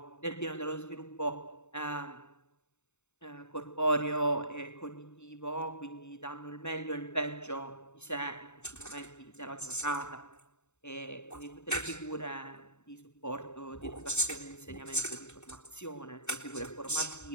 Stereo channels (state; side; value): late; right; 0.82 ms